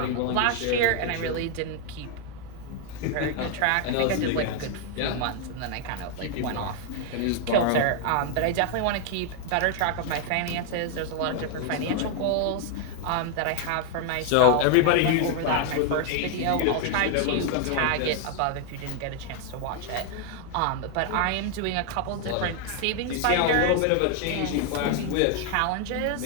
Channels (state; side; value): different; both; correlation 0.00